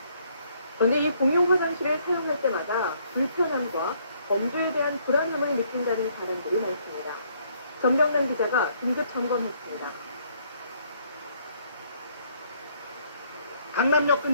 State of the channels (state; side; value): inverted; both; correlation -0.67